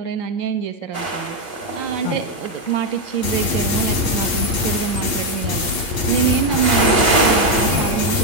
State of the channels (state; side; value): late; right; 8.7 ms